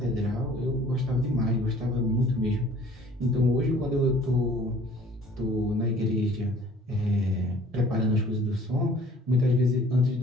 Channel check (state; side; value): normal; both; correlation 0.53